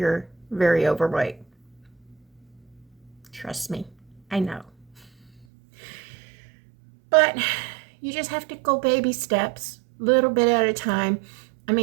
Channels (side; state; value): left; drops out; at 5.5 s